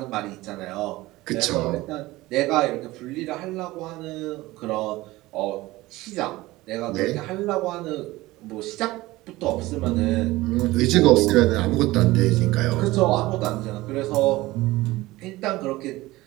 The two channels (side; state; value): left; quieter; 18.9 dB